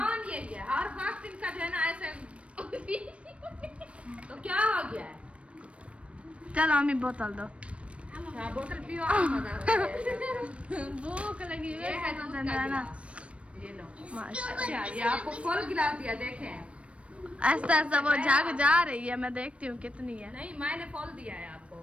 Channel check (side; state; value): left; late; 0.061 ms